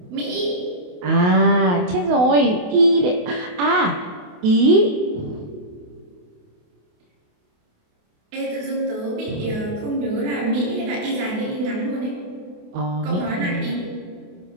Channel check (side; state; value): left; late; 28 ms